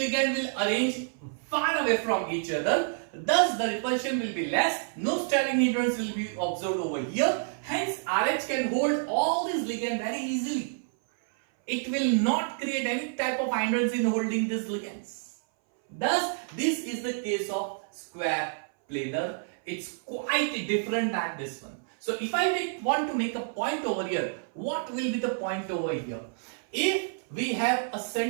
will arrange far away from each other. Thus the repulsion will be less. No stirring hindrance will be observed over here. Hence RH can hold all these ligand very easily. It will not create any type of hindrance in holding these ligands. Thus this is the case of square planar. It's quite different than this one. So if I want to make a point over here, what will be the point over here? If we have a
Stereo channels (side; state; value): left; silent; 58 dB below the other